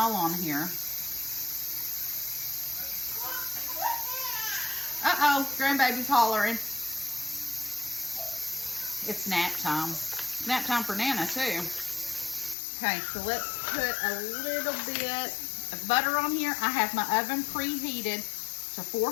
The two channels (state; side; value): drops out; right; at 12.6 s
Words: on here. Uh-oh, grandbaby's hollering. It's nap time. Nap time for Nana, too. Okay, so let's put a little bit of butter on here. I have my oven preheated to